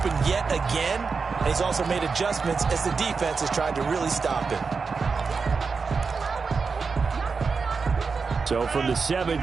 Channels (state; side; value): quieter; left; 4.9 dB